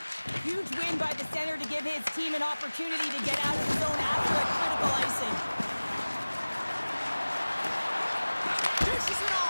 Huge win by the center to give his team an opportunity to get out of the zone after a critical icing. Dishes it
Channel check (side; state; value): both; inverted; correlation -1.00